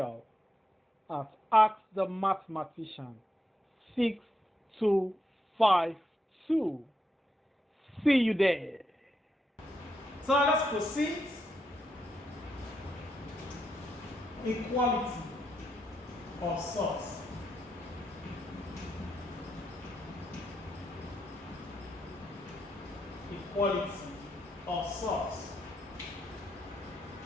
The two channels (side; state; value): both; normal; correlation 0.81